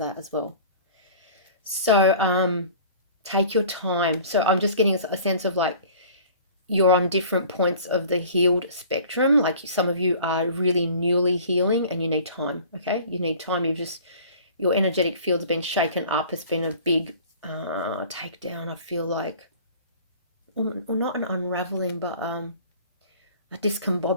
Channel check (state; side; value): inverted; both; correlation -0.46